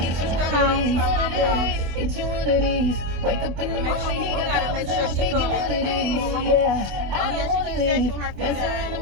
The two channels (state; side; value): late; left; 24 ms